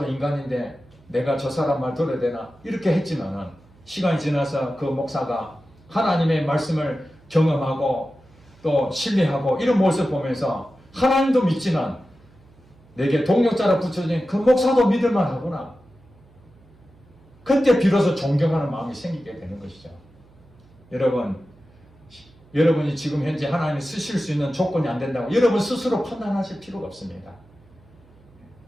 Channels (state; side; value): noise; right; hum, 27 dB below the sound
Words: 인간인데 내가 저 사람 말 들어야 되나 이렇게 했지만은 시간이 지나서 그 목사가 하나님의 말씀을 경험하고 또 신뢰하고 이런 모습을 보면서 하나님도 믿지만 내게 동력자로 붙여진 그 목사도 믿을만 하구나. 그때 비로소 존경하는 마음이 생기게 되는 것이죠. 여러분이 지금 현재 하나님이 쓰실 수 있는 조건이 안 된다고 여러분 스스로 판단하실 필요가 없습니다.